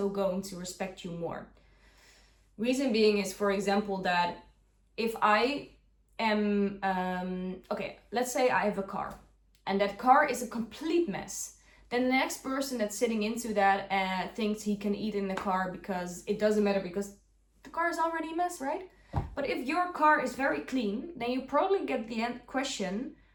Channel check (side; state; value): both; identical; correlation 1.00